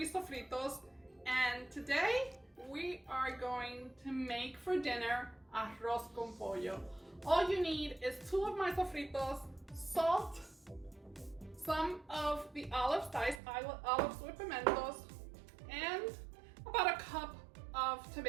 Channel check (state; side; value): drops out; left; at 13.4 s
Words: sofritos, and today we are going to make for dinner Arroz Con Pollo. All you need is 2 of my sofritos, salt, some of the olives, diced olives with pimentos, and about a cup of